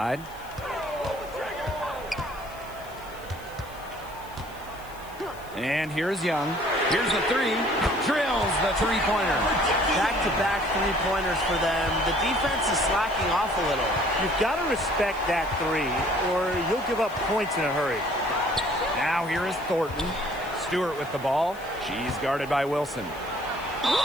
And here's Young. Here's the 3. Drills the 3-pointer. Back-to-back 3-pointers for them. The defense is slacking off a little. You've got to respect that 3, or you'll give up points in a hurry. Now here is Thornton. Stewart with the ball. She's guarded by Wilson.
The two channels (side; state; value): left; noise; hiss, 22 dB below the sound